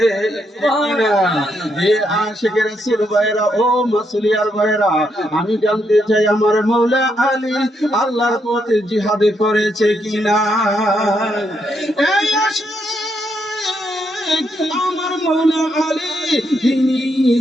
আশিকে রাসূল ভাইরা, ও মাসুলিয়ার ভাইরা, আমি জানতে চাই আমার মওলা আলী আল্লাহর পথে জিহাদে করেছে কিনা? এই আমার মওলা আলী, তিনি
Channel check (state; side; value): normal; both; correlation 0.78